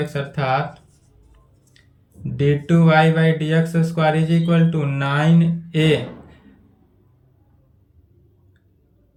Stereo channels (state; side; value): identical; both; correlation 1.00